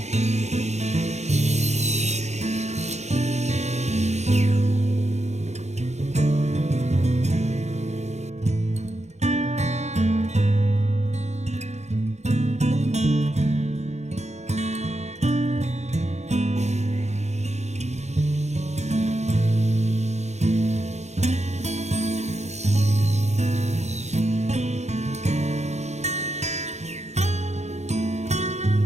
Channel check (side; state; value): left; late; 0.33 ms